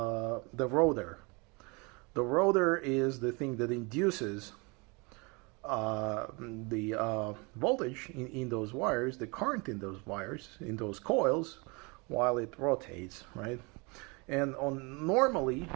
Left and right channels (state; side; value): quieter; left; 29.1 dB